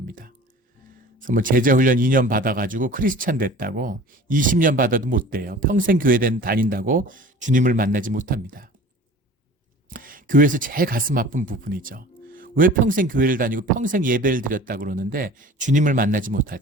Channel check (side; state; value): both; normal; correlation 0.42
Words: 그래서 뭐 제자훈련 2년 받아가지고 크리스찬 됐다고 20년 받아도 못 돼요. 평생 교회 다닌다고 주님을 만나지 못합니다. 교회에서 제일 가슴 아픈 부분이죠. 왜 평생 교회를 다니고 평생 예배를 드렸다고 그러는데 주님을 만나지